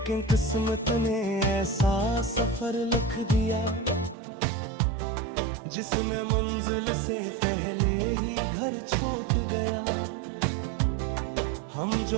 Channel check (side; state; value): left; drops out; at 4.2 s